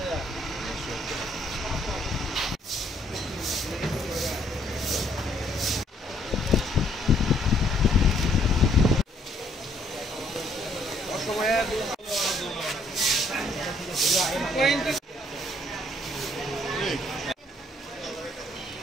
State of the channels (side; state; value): both; normal; correlation 0.66